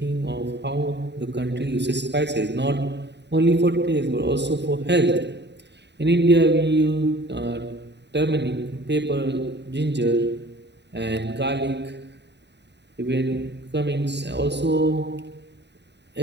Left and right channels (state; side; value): late; left; 0.50 ms